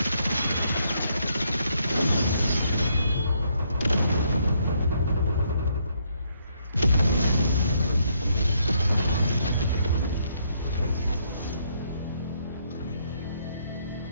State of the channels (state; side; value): inverted; both; correlation -0.72